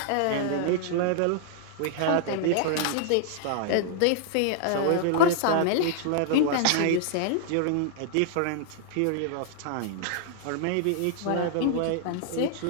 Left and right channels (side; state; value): both; different; correlation -0.01